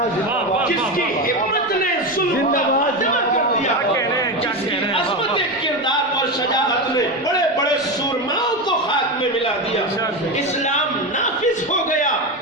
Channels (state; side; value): normal; both; correlation 0.17